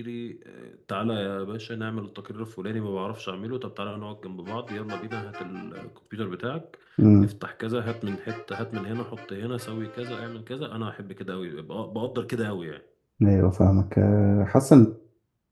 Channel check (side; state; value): both; identical; correlation 1.00